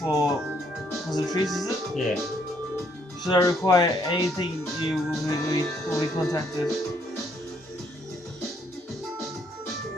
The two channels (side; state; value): both; normal; correlation 0.69